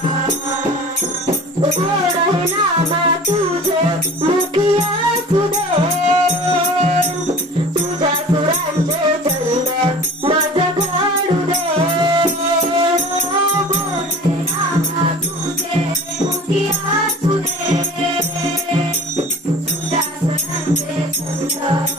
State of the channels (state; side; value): normal; both; correlation 0.42